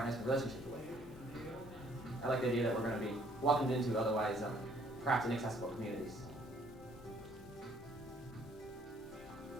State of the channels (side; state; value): both; normal; correlation 0.63